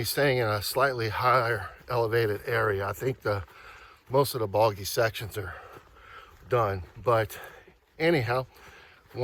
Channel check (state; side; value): identical; both; correlation 1.00